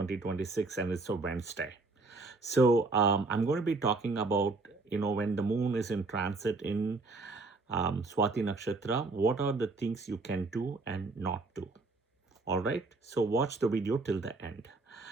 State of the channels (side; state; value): left; quieter; 3.5 dB